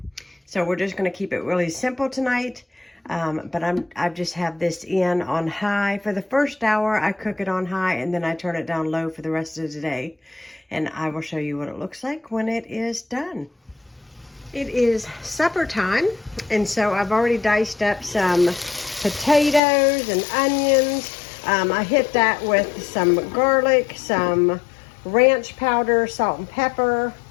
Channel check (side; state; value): right; drops out; at 19.6 s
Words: So we're just going to keep it really simple tonight. But I just have this in on high. For the first hour, I cook it on high, and then I turn it down low for the rest of the day. And I will show you what it looks like when it is done. It is supper time, and so I've already diced up some potatoes and onions. I hit that with some garlic, some ranch powder, salt and pepper,